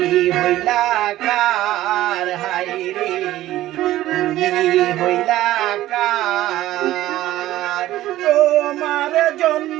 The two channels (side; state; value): left; quieter; 14.9 dB